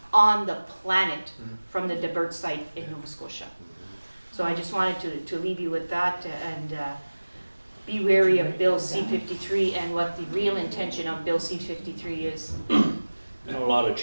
on the planet from the Debert site in Nova Scotia. So I just wanted to leave you with that, and be wary of Bill C-53 and what the real intention of Bill C-53 is. You know, a lot of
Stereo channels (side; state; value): both; inverted; correlation -1.00